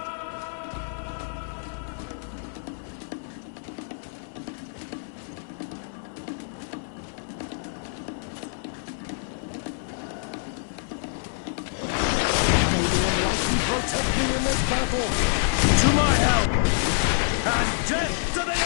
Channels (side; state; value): right; silent; 59 dB below the other